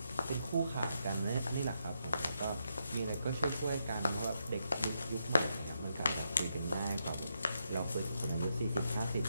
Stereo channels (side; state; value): both; inverted; correlation -0.81